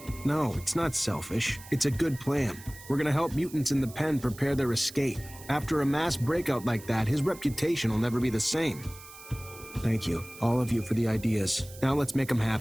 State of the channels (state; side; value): noise; right; hiss, 18 dB below the sound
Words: No, it's not selfish. It's a good plan. We're gonna help mutants in the pen prepare their escape. After a mass breakout like that, his reputation will never be the same. Thank you, all of you, for the ideas. Now let's make them